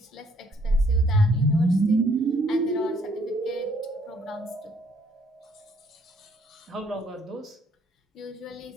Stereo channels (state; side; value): normal; both; correlation 0.66